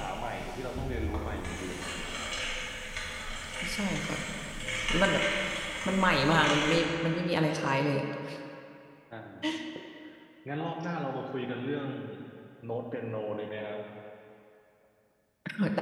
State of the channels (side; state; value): both; identical; correlation 1.00